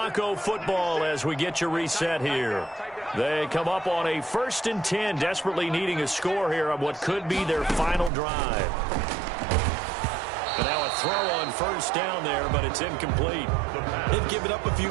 football as we get you reset here. They come up on a 1st and 10, desperately needing a score here on what could be their final drive. Now a throw on first down there, but it's incomplete. They've given up a few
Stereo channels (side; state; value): left; drops out; at 8.1 s